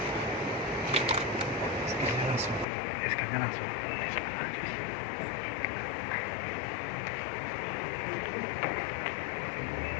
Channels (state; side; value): drops out; right; at 2.7 s